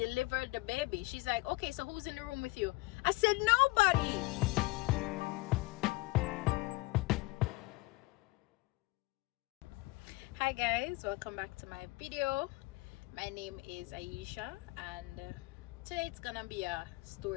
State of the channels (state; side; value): quieter; right; 22.7 dB